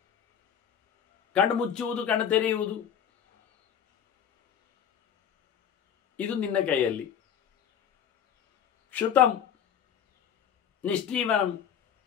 ಕಣ್ಣು ಮುಚ್ಚುವುದು, ಕಣ್ಣು ತೆರೆಯುವುದು, ಇದು ನಿನ್ನ ಕೈಯಲ್ಲಿ. ಕ್ಷುತಂ ನಿಷ್ಠೀವನಂ,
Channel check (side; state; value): right; quieter; 8.5 dB